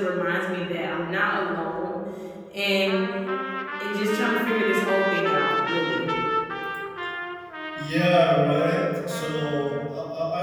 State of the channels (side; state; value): both; identical; correlation 1.00